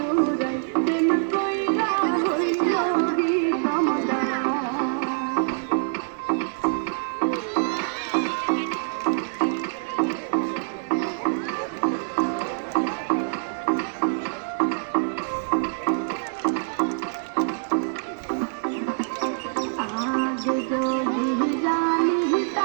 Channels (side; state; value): left; silent; 62 dB below the other